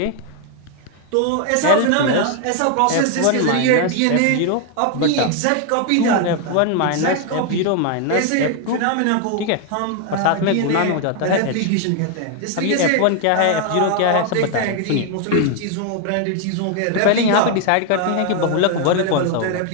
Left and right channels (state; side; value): different; both; correlation 0.01